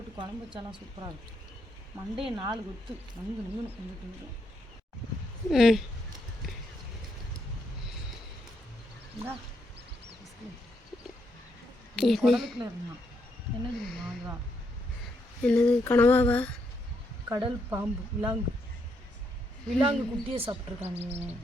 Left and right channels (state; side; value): normal; both; correlation 0.78